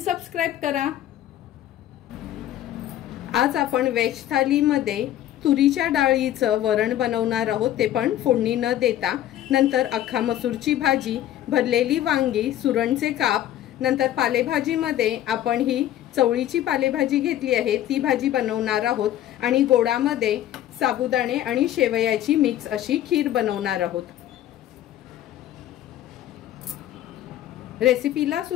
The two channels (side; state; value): right; quieter; 12.4 dB